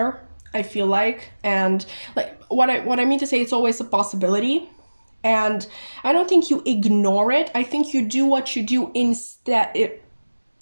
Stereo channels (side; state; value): both; inverted; correlation -1.00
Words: I feel like. And like what I mean to say, it's always a possibility. And I don't think you ignore it. I think you do what you do instead.